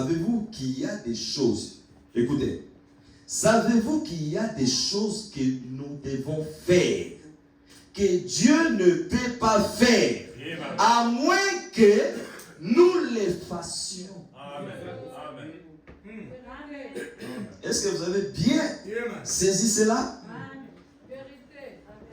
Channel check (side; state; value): both; identical; correlation 1.00